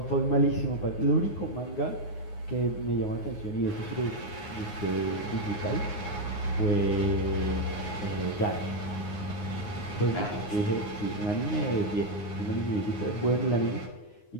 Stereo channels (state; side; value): late; right; 9.6 ms